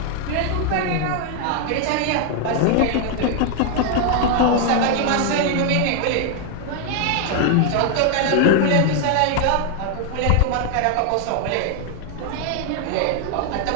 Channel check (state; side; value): different; both; correlation 0.00